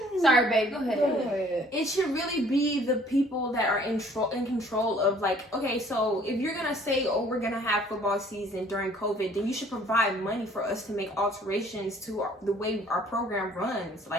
Sorry, babe. Go ahead. Go ahead. It should really be the people that are in control of, like, okay, so if you're gonna say, oh, we're gonna have football season during COVID, then you should provide money for us to make alterations to the way our program runs.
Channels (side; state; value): both; normal; correlation 0.57